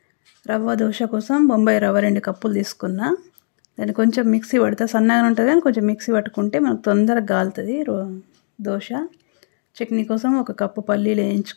రవ్వ దోశ కోసం బొంబాయి రవ్వ 2 కప్పులు తీసుకున్నా. దాన్ని కొంచెం మిక్సీ పడితే సన్నగా ఉంటుంది, కానీ కొంచెం మిక్సీ పట్టుకుంటే మనకు తొందరగా కాలుతుంది దోశ. చట్నీ కోసం 1 కప్పు పల్లీలు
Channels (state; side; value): silent; right; 63 dB below the other